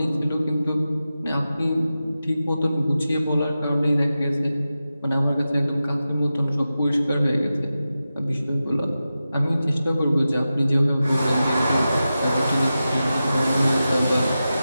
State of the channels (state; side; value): inverted; both; correlation -0.92